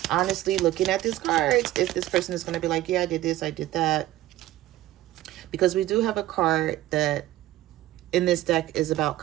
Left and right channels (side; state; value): left; quieter; 15.2 dB